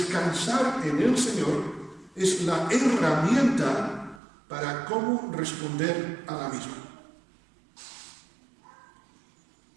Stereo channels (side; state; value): left; drops out; at 4.2 s